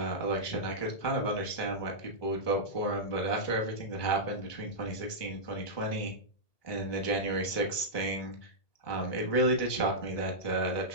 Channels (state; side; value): late; right; 1.2 ms